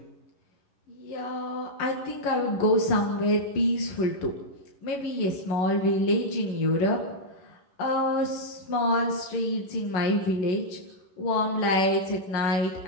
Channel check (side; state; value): right; late; 11 ms